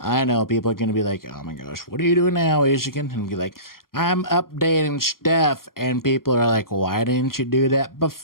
know people are going to be like, oh my gosh, what are you doing now, Ishikin? And be like, I'm updating stuff. And people are like, why didn't you do that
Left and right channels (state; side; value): late; right; 0.92 ms